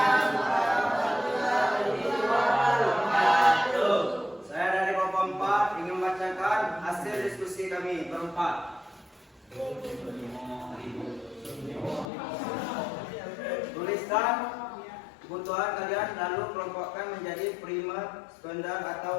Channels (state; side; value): drops out; right; at 12.1 s